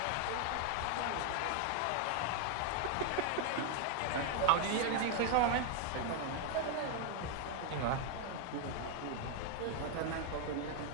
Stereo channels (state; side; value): different; both; correlation 0.01